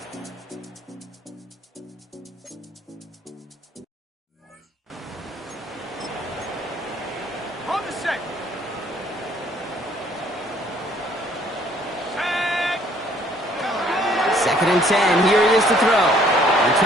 On the set. Second and 10. Here it is to throw. They're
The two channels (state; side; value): normal; both; correlation 0.61